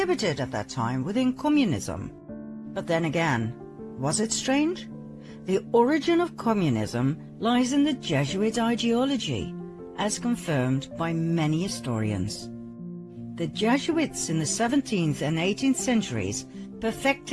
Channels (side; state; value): both; identical; correlation 1.00